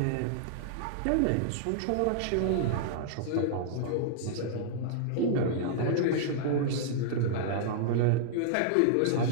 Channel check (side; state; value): both; different; correlation -0.01